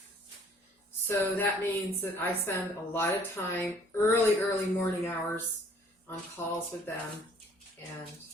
so that means that I spend a lot of time, early morning hours on calls with them, and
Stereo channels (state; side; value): normal; both; correlation 0.58